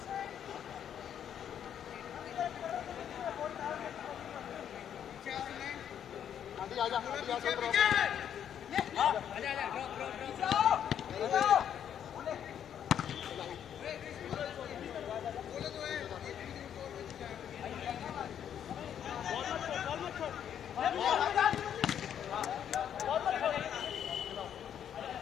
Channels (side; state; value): right; quieter; 9.2 dB